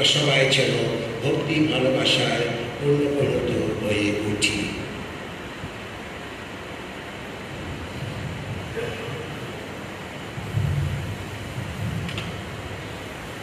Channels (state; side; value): identical; both; correlation 1.00